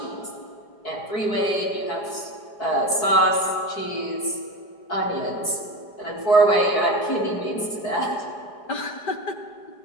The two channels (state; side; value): late; right; 4.6 ms